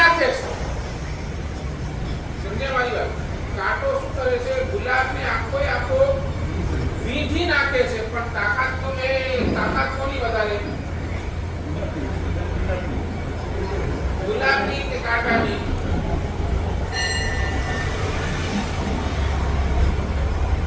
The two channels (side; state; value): both; identical; correlation 1.00